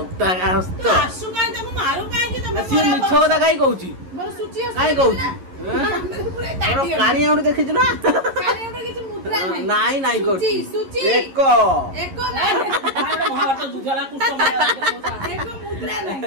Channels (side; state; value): left; late; 11 ms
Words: ମିଛ କଥା କାହିଁ କହୁଛି କାହିଁ କହୁଛି କାଣି ଆଉଠି ଦେଖିଛୁ ନା ନାଇଁ ନାଇଁ କରୁଛି ଏକ